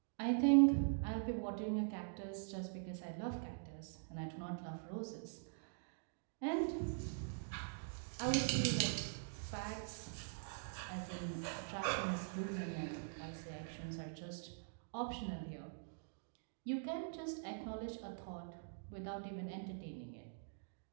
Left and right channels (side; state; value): left; silent; digital silence